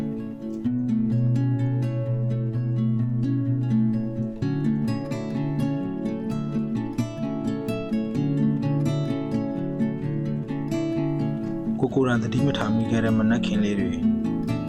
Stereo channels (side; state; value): both; identical; correlation 1.00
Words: ကိုယ်တိုင်တတိမထားမိခဲ့တဲ့မနက်ခင်းလေးတွေ